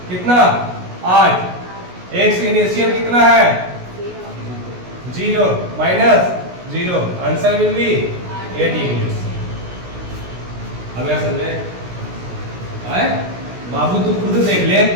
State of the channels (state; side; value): late; left; 16 ms